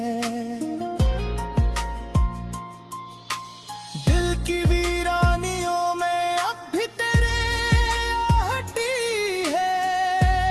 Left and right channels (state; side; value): identical; both; correlation 1.00